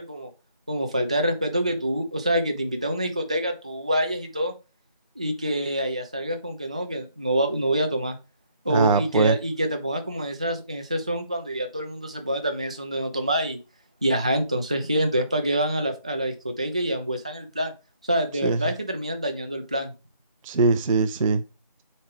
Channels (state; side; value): inverted; both; correlation -0.67